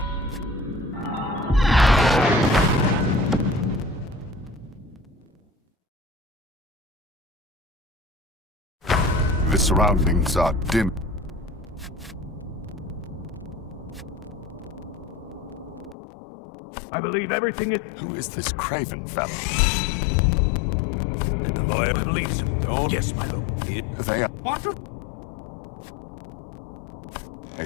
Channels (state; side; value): drops out; right; at 16.0 s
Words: The surroundings are dim. I believe everything is... Who is this Craven fellow? And the lawyer, I believe so. Don't... Yes, my lord. They are What a